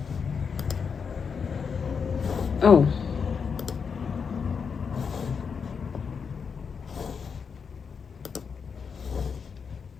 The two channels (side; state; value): right; quieter; 6.0 dB